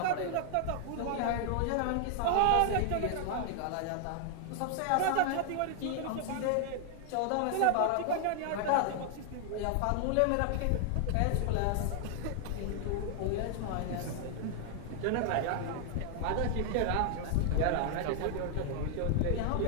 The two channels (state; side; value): different; both; correlation 0.00